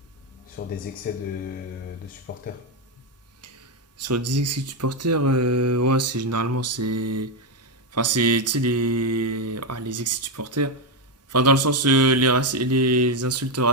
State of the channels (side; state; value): both; normal; correlation 0.06